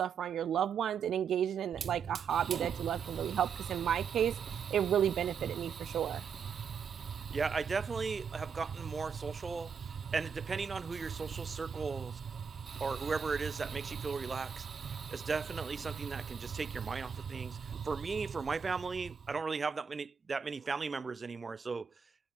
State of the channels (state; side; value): quieter; left; 6.6 dB